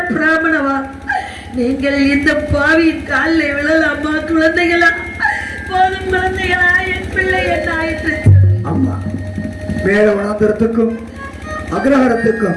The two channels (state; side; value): identical; both; correlation 1.00